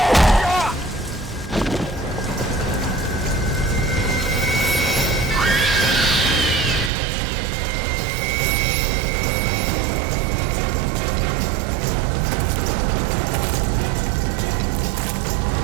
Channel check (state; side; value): drops out; left; at 6.9 s